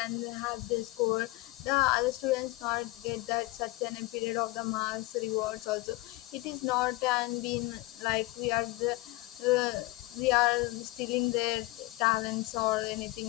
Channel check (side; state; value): right; quieter; 20.9 dB